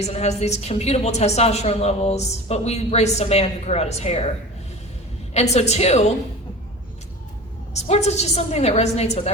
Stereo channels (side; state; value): both; normal; correlation 0.35